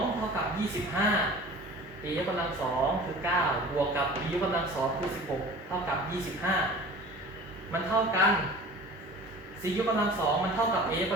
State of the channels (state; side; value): normal; both; correlation 0.41